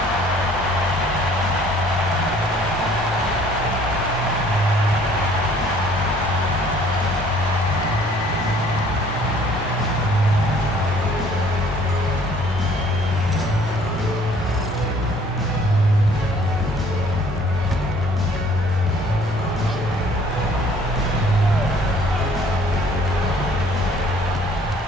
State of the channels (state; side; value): normal; both; correlation 0.57